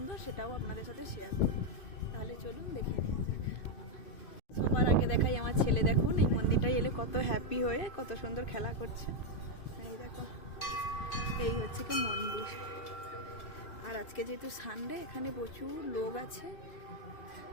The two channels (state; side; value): late; right; 2.5 ms